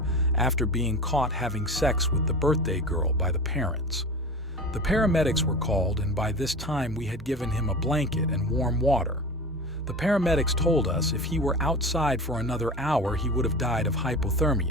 after being caught having sex with the birthday girl by the parents. The paramedics were called, and by this time we had given him a blanket and warm water. The paramedics told us if he were outside for another hour, he would have died of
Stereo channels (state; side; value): normal; both; correlation 0.32